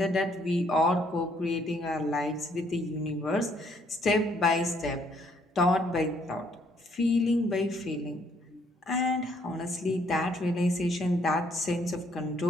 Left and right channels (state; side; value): normal; both; correlation 0.67